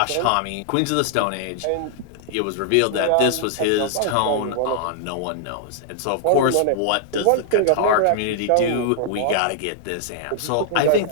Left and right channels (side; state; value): both; different; correlation -0.01